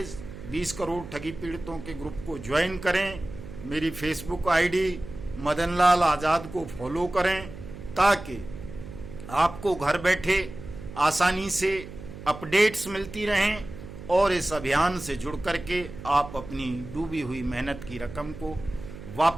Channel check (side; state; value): right; noise; hum, 13 dB below the sound